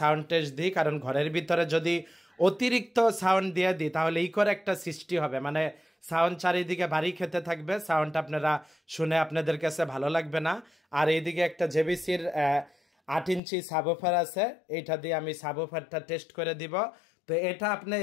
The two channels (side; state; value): right; drops out; at 13.4 s